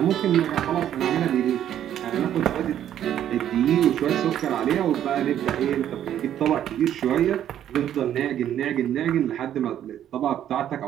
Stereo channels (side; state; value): left; quieter; 10.7 dB